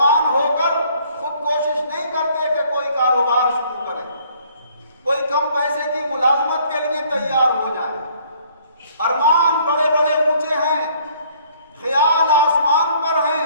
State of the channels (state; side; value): inverted; both; correlation -0.60